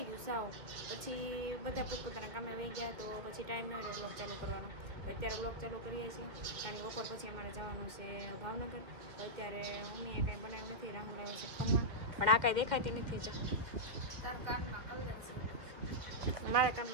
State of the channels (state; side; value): late; left; 2.0 ms